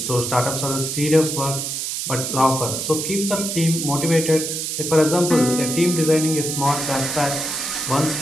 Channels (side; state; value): right; noise; hiss, 3 dB below the sound